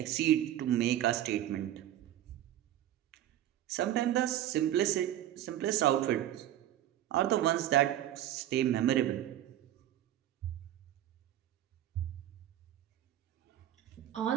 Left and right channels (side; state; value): left; quieter; 12.4 dB